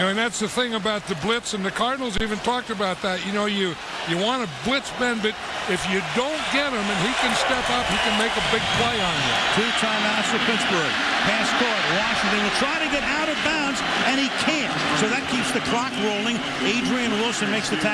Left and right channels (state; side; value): identical; both; correlation 1.00